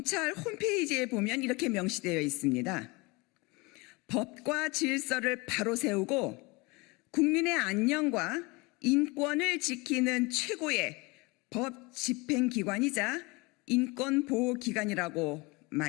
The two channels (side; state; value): right; quieter; 25.6 dB